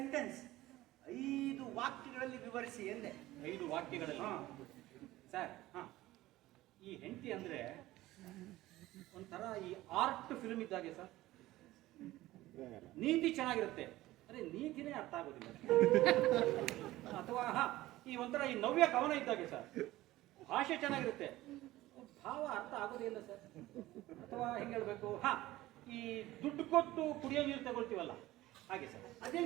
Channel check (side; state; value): left; quieter; 16.8 dB